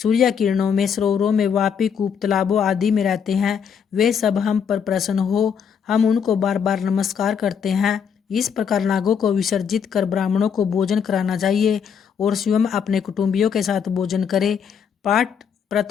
किरणों में, सरोवरों में, वापी, कूप, तालाबों आदि में रहते हैं, वे सब हम पर प्रसन्न हो। हम उनको बार बार नमस्कार करते हैं। इस प्रकार नागों को विसर्जित कर ब्राह्मणों को भोजन कराना चाहिए और स्वयं अपने कुटुंबियों के साथ भोजन करे। पाठ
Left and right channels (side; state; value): right; quieter; 7.2 dB